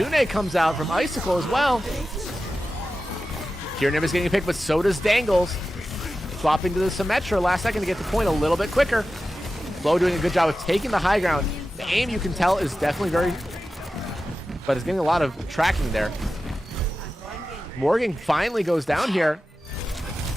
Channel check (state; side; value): normal; both; correlation 0.93